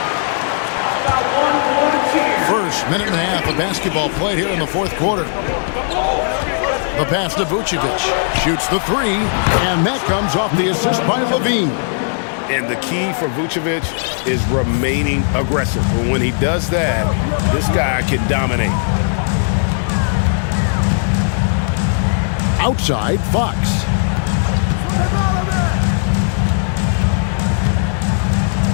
First minute and a half of basketball played here in the 4th quarter. The pass to Vucevic. Shoots the 3, and that comes off the assist by Levine. And the key for Vucevic is remaining aggressive. But when he does that, this guy can dominate. Outside, Fox.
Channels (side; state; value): right; silent; digital silence